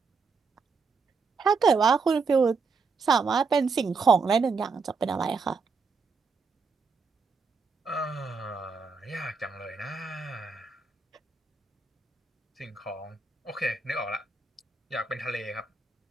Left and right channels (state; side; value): quieter; left; 4.7 dB